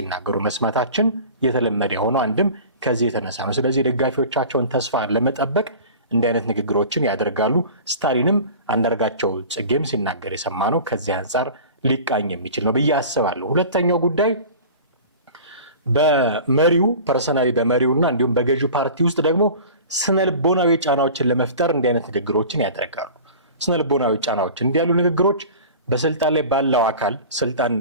መስማታችን የተለመደ የሆነው አንድም ከዚህ የተነሳ ነው። ስለዚህ ደጋፊዎቻቸውን ተስፋ ለመጠበቅ እንዲህ አይነት ንግግሮችን ያደርጋሉ። ስታሊንም አንዳርጋቸው ጽጌም ሲናገር የሰማ ነው። ከዚህ አንጻር ሊቃኝ የሚችል ነው ብዬ አስባለሁ። ሁለተኛው ጉዳይ በመሪው ፐርሰናሊ በመሪውና እንዲሁም በገዢው ፓርቲ ውስጥ ደግሞ ስነልቦናዊ ጫናዎችን ለመፍጠር እንዲህ አይነት ንግግሮችን ያደርጋሉ። ስነልቦናዊ ጫናዎች እንዲህ ያሉ ንግግሮች በስልጣን ላይ ባለው አካል ስልጣን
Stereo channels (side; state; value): both; inverted; correlation -0.39